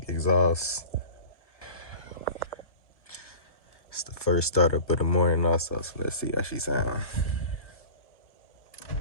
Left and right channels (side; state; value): right; late; 1.5 ms